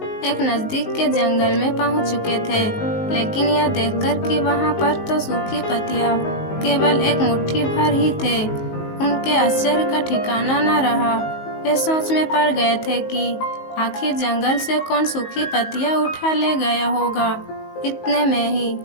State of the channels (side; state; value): right; late; 19 ms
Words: एक नजदीक के जंगल में पहुंच चुके थे, लेकिन यह देखकर कि वहां पर तो सूखी पत्तियां केवल एक मुट्ठी भर ही थे, उनके आश्चर्य का ठिकाना न रहा। वे सोच में पड़ गए थे कि आखिर जंगल से कौन सूखी पत्तियां उठा ले गया होगा। इतने में ही